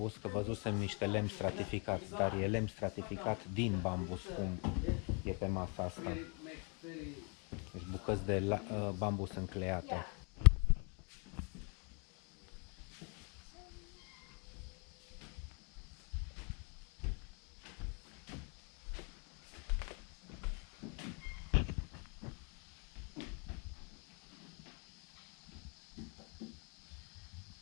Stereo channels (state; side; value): quieter; right; 36.4 dB